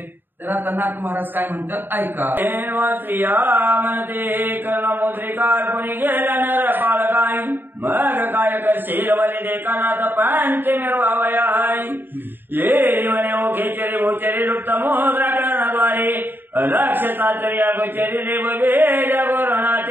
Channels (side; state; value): left; late; 0.095 ms